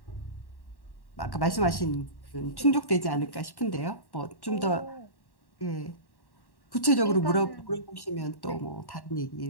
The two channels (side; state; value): right; late; 1.1 ms